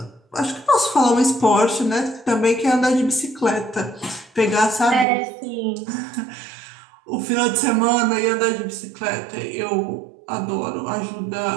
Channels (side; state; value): left; drops out; at 5.1 s